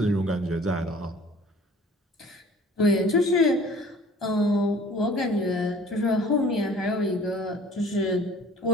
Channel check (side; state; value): both; normal; correlation 0.49